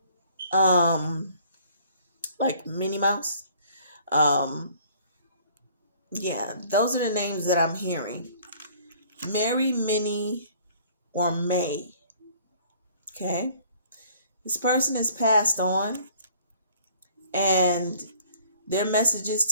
like Minnie Mouse. Um, yeah, those are the names that I'm hearing. Mary, Minnie, or May. Okay, this person has passed on, and their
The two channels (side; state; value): both; inverted; correlation -0.55